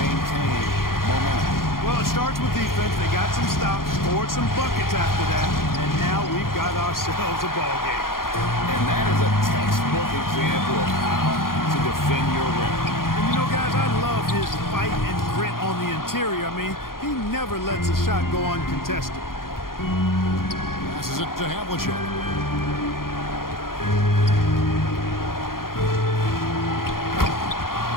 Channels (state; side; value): late; right; 0.91 ms